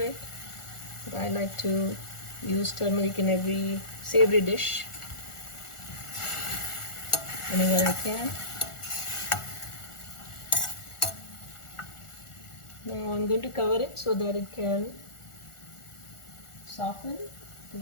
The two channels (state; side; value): late; right; 1.4 ms